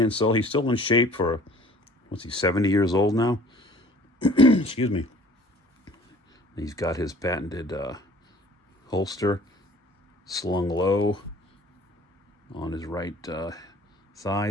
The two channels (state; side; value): normal; both; correlation 0.51